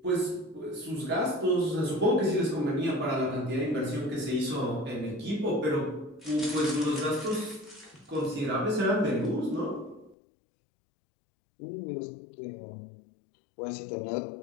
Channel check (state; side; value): drops out; right; at 10.2 s